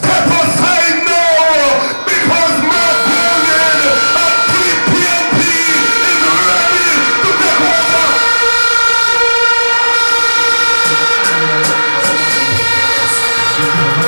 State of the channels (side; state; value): both; inverted; correlation -1.00